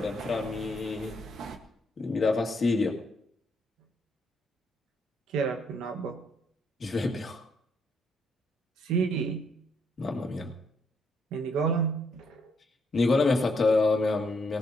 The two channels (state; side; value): normal; both; correlation 0.74